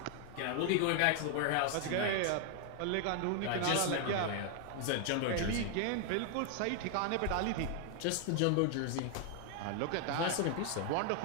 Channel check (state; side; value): different; both; correlation 0.00